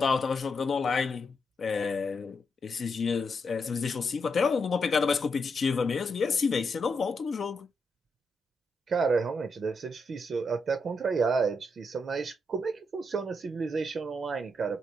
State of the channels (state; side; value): normal; both; correlation 0.81